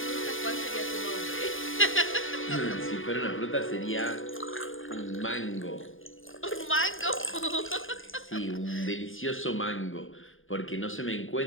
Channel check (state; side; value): late; right; 0.59 ms